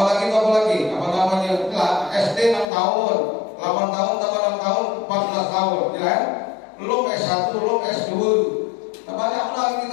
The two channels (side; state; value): right; drops out; at 2.7 s